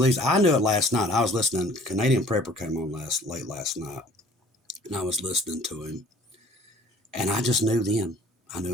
knew it last night. I was listening. Canadian Prepper came on late last night, and I was listening to him, and I just knew then. I knew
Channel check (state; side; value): normal; both; correlation 0.54